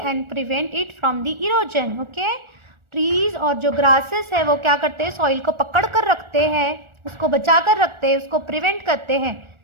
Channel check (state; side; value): late; left; 1.4 ms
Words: prevent it from the erosion. Okay, trees और जो ग्रासेस है वो क्या करते हैं, सॉइल को पकड़ कर रखते हैं, उसको बचा कर रखते हैं, उसको प्रिवेंट करते हैं.